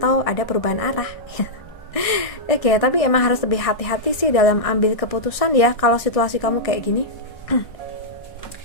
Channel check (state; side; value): late; right; 1.6 ms